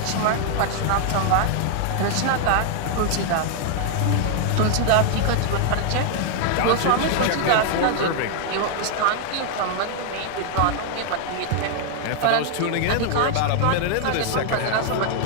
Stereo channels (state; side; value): different; both; correlation 0.00